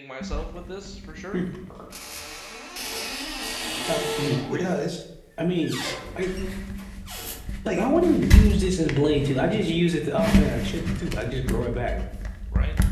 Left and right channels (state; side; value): identical; both; correlation 1.00